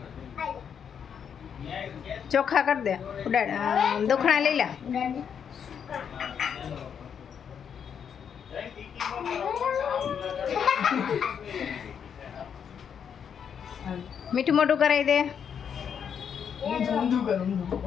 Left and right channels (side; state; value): right; quieter; 7.7 dB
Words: ચોખા કરી દે ઉડાડ દુખણા લઈ લે મીઠું મોટું કરાવી દે